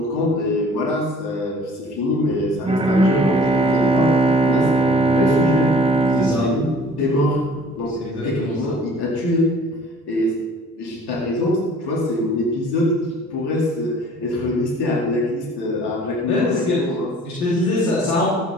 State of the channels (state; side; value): normal; both; correlation 0.49